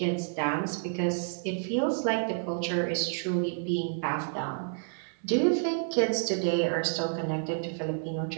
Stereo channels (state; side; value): silent; left; digital silence